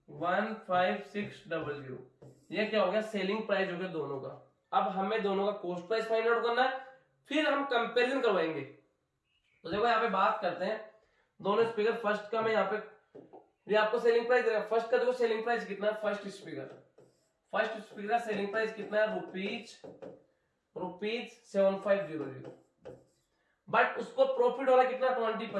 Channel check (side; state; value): both; identical; correlation 1.00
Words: 15600। ये क्या हो गया सेलिंग प्राइस हो गया दोनों का। अब हमें दोनों का कॉस्ट प्राइस फाइंड आउट करना है, फिर हम कंपैरिजन करवाएंगे। तो देखो यहाँ पे बात करते हैं दोनों स्पीकर। फर्स्ट का मैं यहाँ पे ये आपको सेलिंग प्राइस देगा। फर्स्ट का देखो सेलिंग प्राइस कितना है, फर्स्ट स्पीकर का सेलिंग प्राइस कितना है रुपीज 7500, बट उसको प्रॉफिट हो रहा है कितना